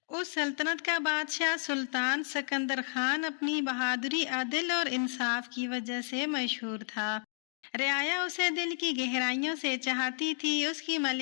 اس سلطنت کا بادشاہ سلطان سکندر خان اپنی بہادری، عدل اور انصاف کی وجہ سے مشہور تھا۔ رعایا اسے دل کی گہرائیوں سے چاہتی تھی۔ اس کی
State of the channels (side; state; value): right; silent; digital silence